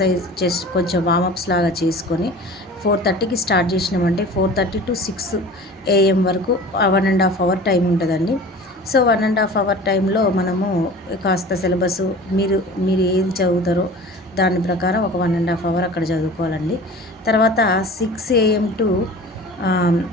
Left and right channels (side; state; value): both; normal; correlation 0.41